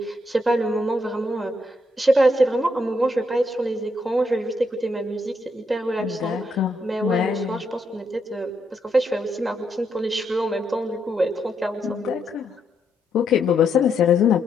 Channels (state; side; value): normal; both; correlation 0.78